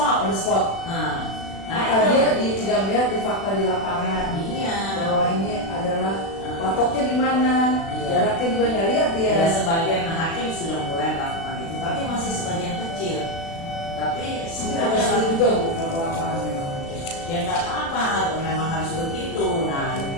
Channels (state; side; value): late; right; 36 ms